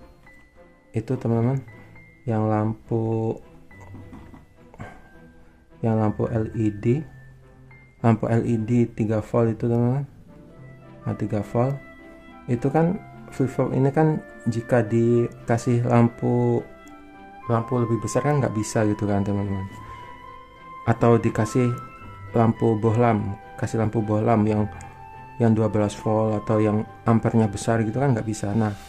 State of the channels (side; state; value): both; identical; correlation 1.00